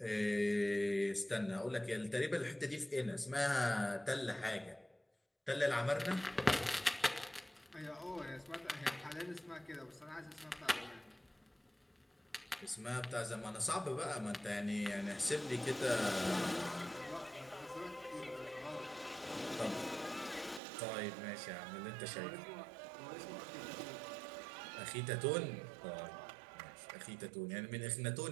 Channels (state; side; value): drops out; left; at 20.6 s